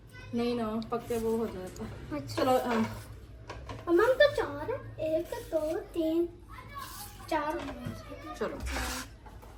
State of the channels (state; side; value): identical; both; correlation 1.00